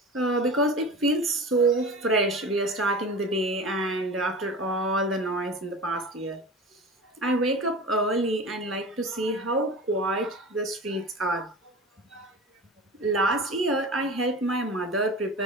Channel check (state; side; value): normal; both; correlation 0.33